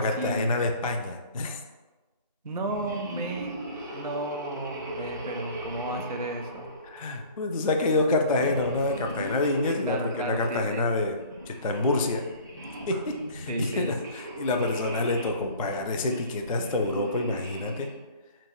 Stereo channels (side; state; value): both; inverted; correlation -0.46